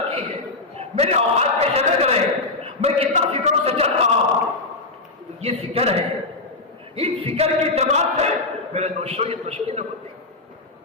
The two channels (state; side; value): quieter; right; 3.3 dB